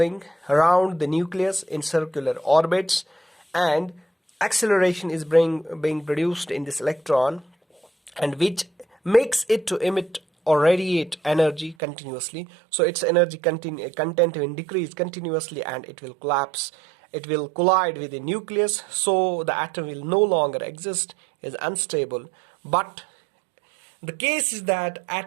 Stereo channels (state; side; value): drops out; left; at 11.8 s